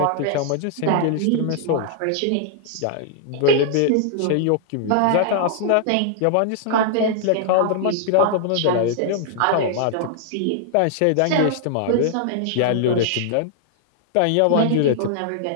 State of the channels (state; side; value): different; both; correlation -0.01